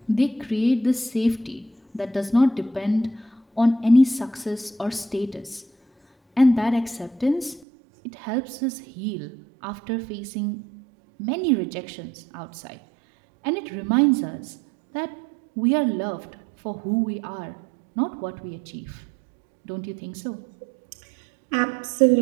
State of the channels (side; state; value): left; drops out; at 7.7 s